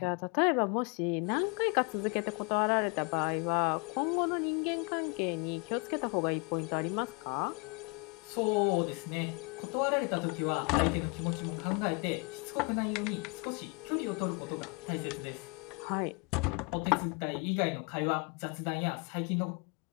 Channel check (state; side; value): quieter; right; 31.5 dB